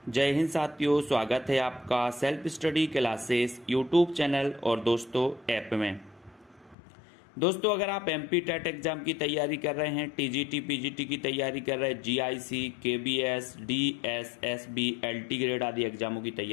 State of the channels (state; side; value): drops out; right; at 6.8 s